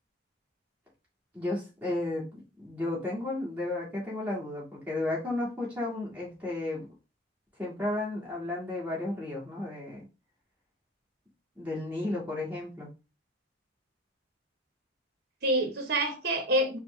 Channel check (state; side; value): normal; both; correlation 0.40